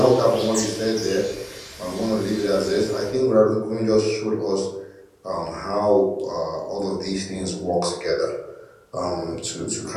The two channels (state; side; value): identical; both; correlation 1.00